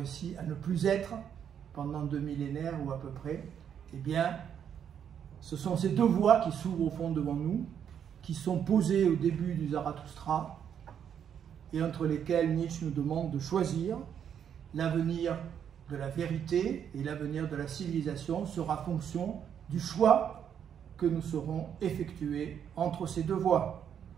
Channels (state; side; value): quieter; left; 8.5 dB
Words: à ne plus être pendant 2 millénaires ou à peu près. Eh bien, ce sont ces deux voies qui s'ouvrent au fond devant nous, qui sont posées au début du Zarathustra, et entre lesquelles Nietzsche nous demande de choisir. L'avenir de la vérité et l'avenir de la civilisation sera fonction du choix que nous saurons effectuer entre ces deux voies.